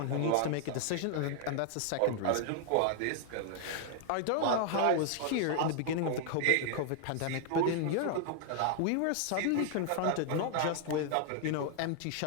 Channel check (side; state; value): both; different; correlation 0.00